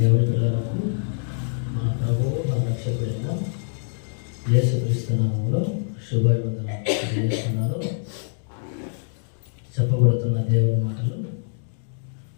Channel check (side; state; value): right; silent; digital silence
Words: పిల్లలకు మన ప్రభువు మన రక్షకుడైన యేసుక్రీస్తు నామములో శుభాభివందనం తెలియజేస్తున్నాను. చెప్పబడుతున్న దేవుని మాటలు